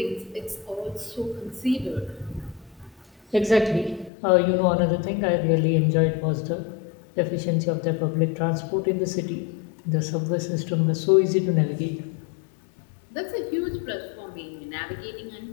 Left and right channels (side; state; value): right; drops out; at 4.1 s